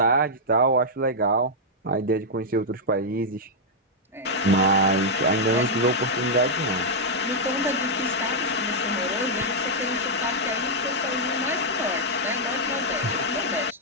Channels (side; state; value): both; normal; correlation -0.05